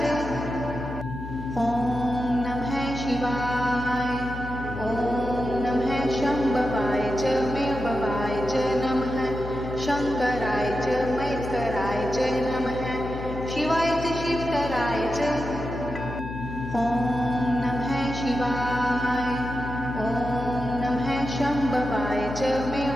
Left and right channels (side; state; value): left; noise; hum, 9 dB below the sound